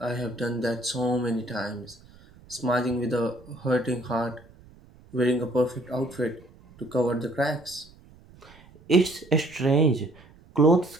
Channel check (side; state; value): right; noise; rumble, 24 dB below the sound